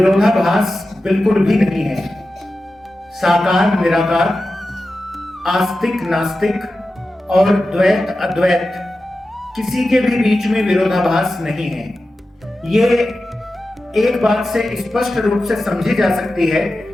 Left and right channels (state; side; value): normal; both; correlation 0.93